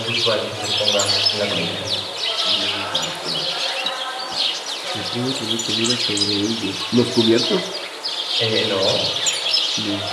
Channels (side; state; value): both; identical; correlation 1.00